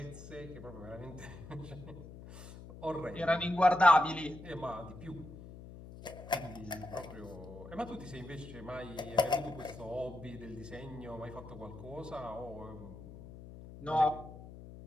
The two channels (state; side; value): noise; left; hum, 14 dB below the sound